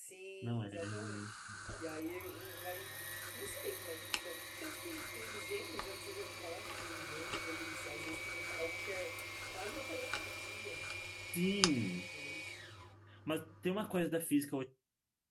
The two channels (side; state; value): both; identical; correlation 1.00